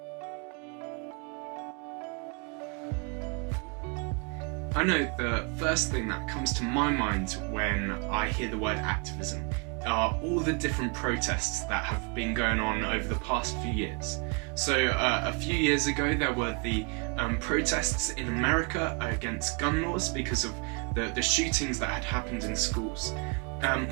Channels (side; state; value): left; quieter; 34.2 dB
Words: I know the first thing that comes to my mind when I hear the word activism are all the different protests that have been going on over the past few years. So a few years ago there were the protests in America against gun laws because of the shootings that had happened in schools.